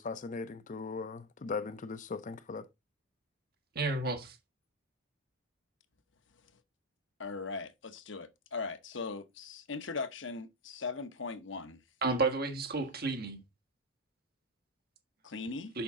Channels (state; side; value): normal; both; correlation 0.06